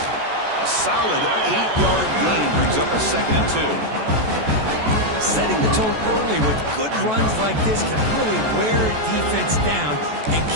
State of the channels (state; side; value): late; left; 14 ms